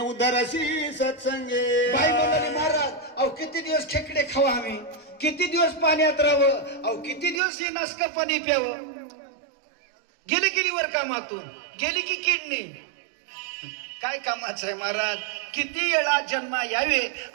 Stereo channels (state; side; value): drops out; left; at 7.4 s